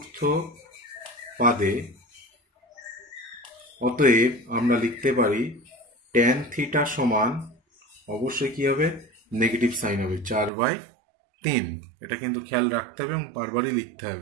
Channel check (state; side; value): drops out; left; at 10.5 s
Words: পাদে, অতএব আমরা লিখতে পারি ট্যান থিটা সমান অবশ্যই কি হবে, নেগেটিভ সাইন হবে 4/3। এটা কিন্তু খেয়াল রাখতে হবে এবং বারবারই লিখতে